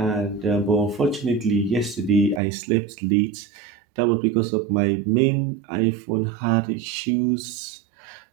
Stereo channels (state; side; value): drops out; left; at 2.4 s